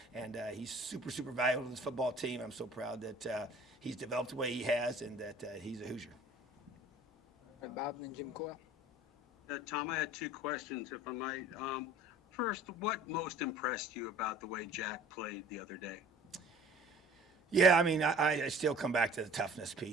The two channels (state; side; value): normal; both; correlation 0.48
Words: And he's super, super valuable to this football team. I'm so proud that he's developed the way he has, and that he's a Hoosier. All right, Bob, and then Jim Coyle. Tom, I had 2 questions, if I might. First, what most impressed you about the way Jack played the other day? Yeah, I mean, I still come back to the toughness